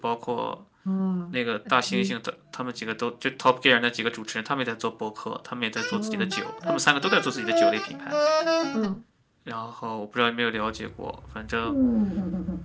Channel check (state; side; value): identical; both; correlation 1.00